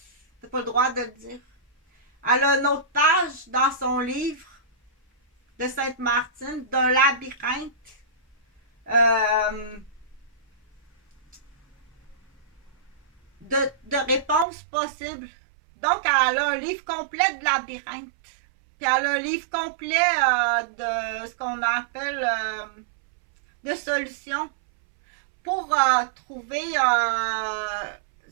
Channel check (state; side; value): drops out; left; at 14.5 s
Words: T'as pas le droit de le dire. Elle a une autre page dans son livre de Sainte-Martine d'un labyrinthe de réponses possibles. Donc, elle a un livre complet de labyrinthe. Puis elle a un livre complet de ce qu'on appelle de solutions pour trouver